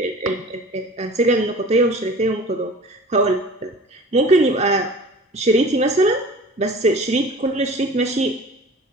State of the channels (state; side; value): normal; both; correlation 0.42